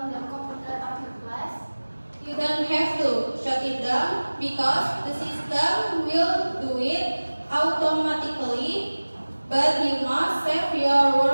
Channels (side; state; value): both; inverted; correlation -1.00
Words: the computer after class? You don't have to shut it down because the system will do it automatically, but you must save your